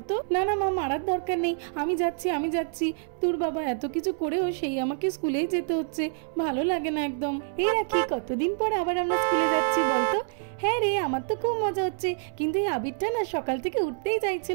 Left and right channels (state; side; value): silent; left; 60 dB below the other